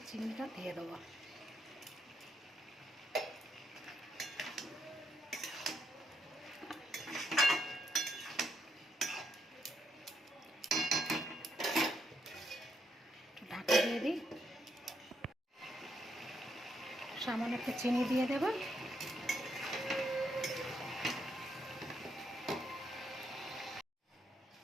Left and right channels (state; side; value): normal; both; correlation 0.77